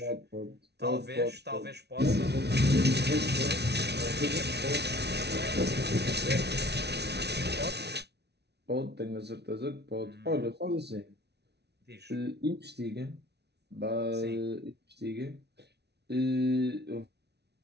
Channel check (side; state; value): left; late; 0.49 ms